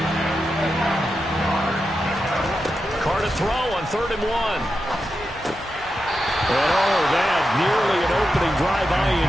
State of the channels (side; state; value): both; normal; correlation 0.89